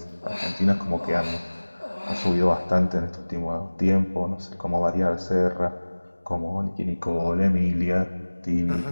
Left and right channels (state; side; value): inverted; both; correlation -1.00